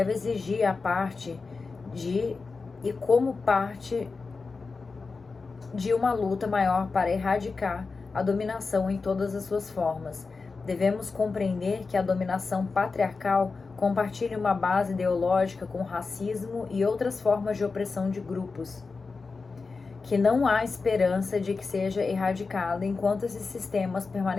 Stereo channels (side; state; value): right; quieter; 4.3 dB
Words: exigir a parte de e como parte de uma luta maior para erradicar a dominação em todas as suas formas. Devemos compreender que a dominação patriarcal compartilhe uma base ideológica com o racismo e outras formas de opressão de grupos, que não há esperança de que seja erradicada enquanto esses sistemas